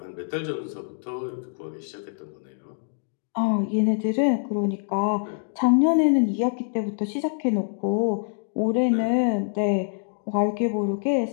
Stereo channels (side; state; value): right; silent; digital silence